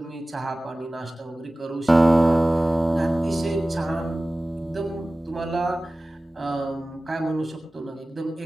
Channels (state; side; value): normal; both; correlation 0.97